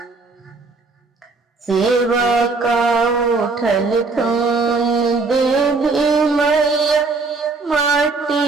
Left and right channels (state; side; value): quieter; left; 3.9 dB